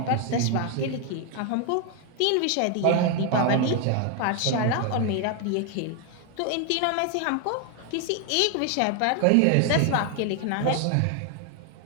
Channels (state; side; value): different; both; correlation 0.01